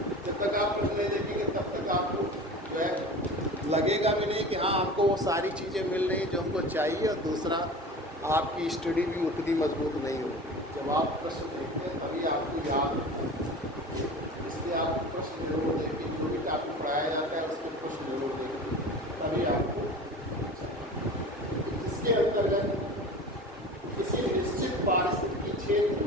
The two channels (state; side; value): normal; both; correlation 0.36